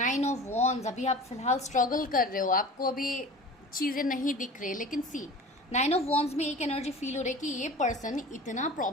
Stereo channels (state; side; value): normal; both; correlation 0.38